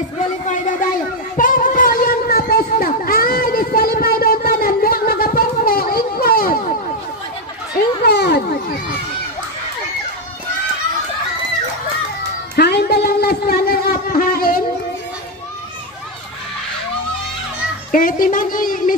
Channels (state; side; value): normal; both; correlation 0.05